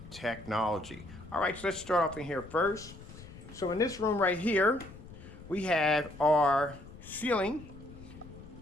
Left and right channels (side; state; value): left; noise; rumble, 17 dB below the sound